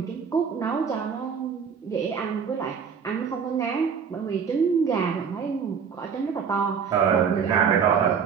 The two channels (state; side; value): quieter; left; 6.6 dB